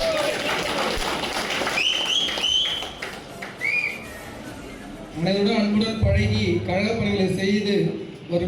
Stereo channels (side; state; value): both; identical; correlation 1.00